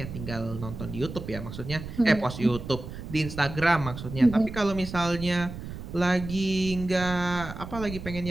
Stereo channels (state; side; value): noise; right; rumble, 10 dB below the sound